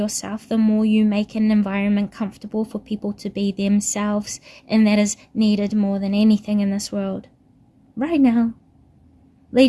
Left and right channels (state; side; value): identical; both; correlation 1.00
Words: the more you make an environment comfortable for people to be themselves, and that is needed more than anything in this world right now,